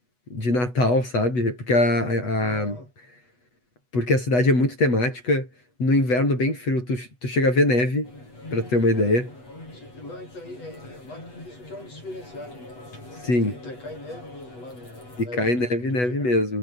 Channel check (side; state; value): right; late; 8.1 ms